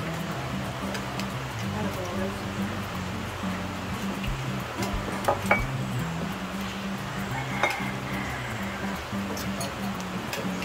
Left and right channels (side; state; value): both; identical; correlation 1.00